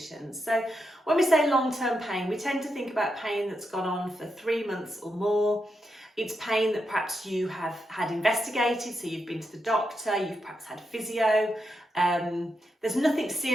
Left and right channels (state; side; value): normal; both; correlation 0.85